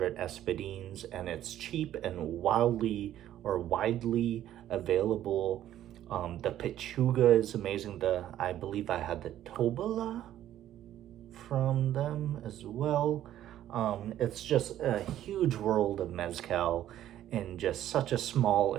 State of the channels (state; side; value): quieter; left; 12.2 dB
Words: Espadines, and it's cheap and widely available. The Pechuga is amazing. I believe I had the Tobala from them as well. It's just a huge world of mezcal in just such a small